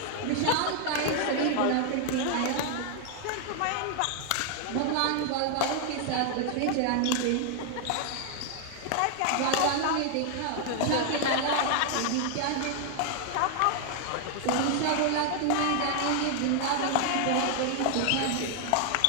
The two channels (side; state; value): both; different; correlation 0.00